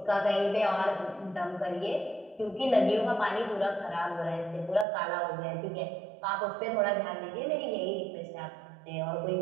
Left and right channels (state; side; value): drops out; left; at 4.9 s